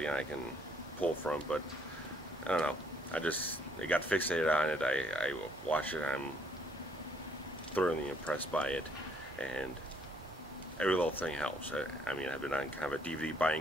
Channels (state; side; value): normal; both; correlation 0.67